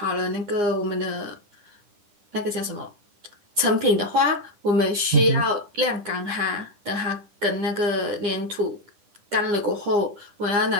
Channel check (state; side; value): late; left; 9.8 ms